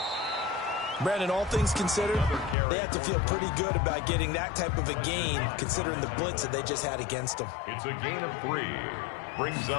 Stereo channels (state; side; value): drops out; right; at 2.6 s